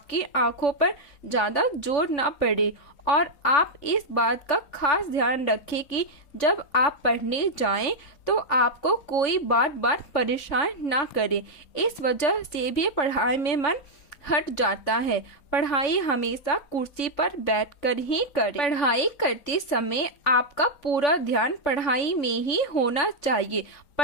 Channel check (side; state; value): right; late; 3.5 ms